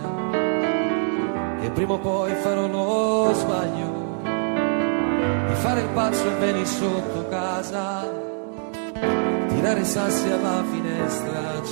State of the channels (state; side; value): silent; left; 63 dB below the other